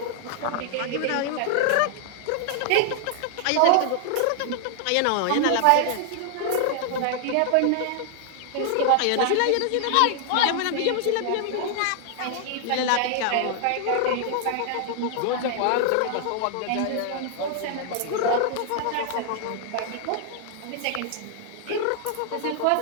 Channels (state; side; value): different; both; correlation 0.00